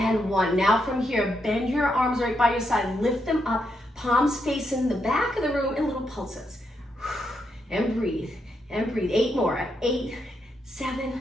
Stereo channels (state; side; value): normal; both; correlation 0.81